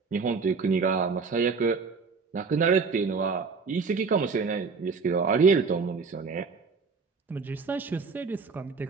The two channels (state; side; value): quieter; left; 4.9 dB